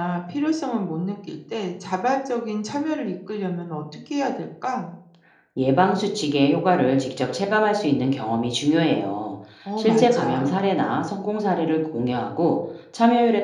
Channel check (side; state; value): both; identical; correlation 1.00